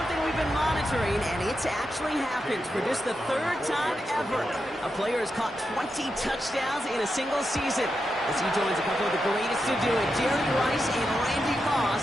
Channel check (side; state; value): both; normal; correlation 0.87